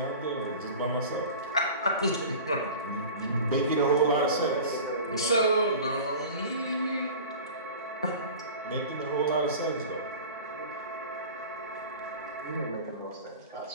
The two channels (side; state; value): both; inverted; correlation -0.37